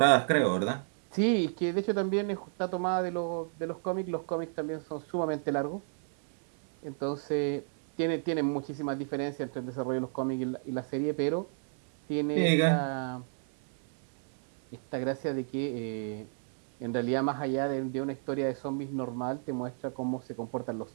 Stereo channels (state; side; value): silent; left; 57 dB below the other